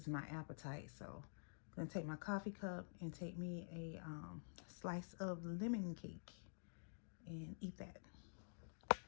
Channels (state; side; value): silent; right; digital silence